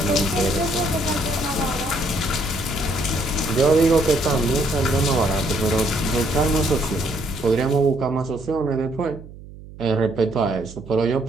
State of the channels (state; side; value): noise; right; hum, 17 dB below the sound